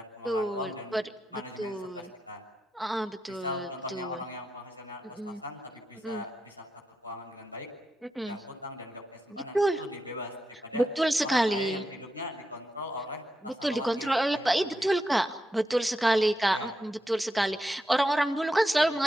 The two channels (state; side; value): normal; both; correlation 0.86